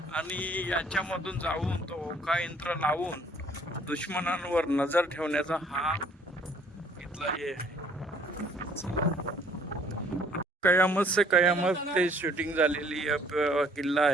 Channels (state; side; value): normal; both; correlation 0.59